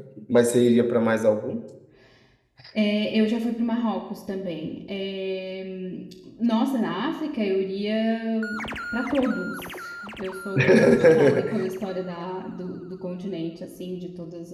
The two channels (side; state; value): both; identical; correlation 1.00